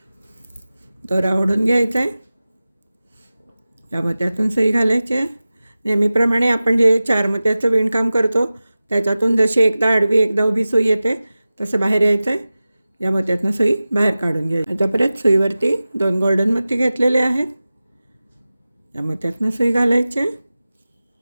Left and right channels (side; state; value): both; inverted; correlation -0.96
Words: दोरा ओढून घ्यायचा आहे. या मोत्यातून सुई घालायची आहे. नेहमीप्रमाणे आपण जे 4 मोत्याचं विणकाम करतो त्याच्यातून जशी एकदा आडवी एकदा उभी सुई येते तसं बाहेर यायचं आहे. या मोत्यातनं सुई बाहेर काढून घ्यायची. आता परत सुईवरती 2 गोल्डन मोती घेतलेले आहेत. या मोत्यातनं सुई घालायची आहे.